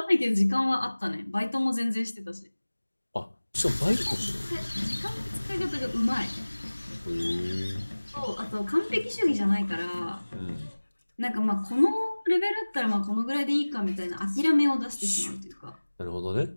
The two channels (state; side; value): inverted; both; correlation -1.00